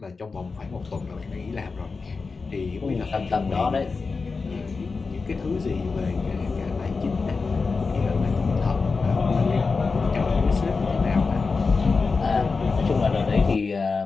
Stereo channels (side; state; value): right; quieter; 4.4 dB